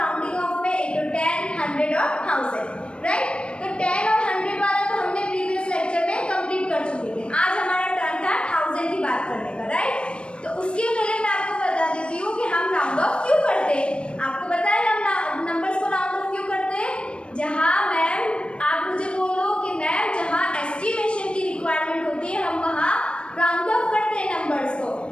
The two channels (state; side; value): late; right; 0.057 ms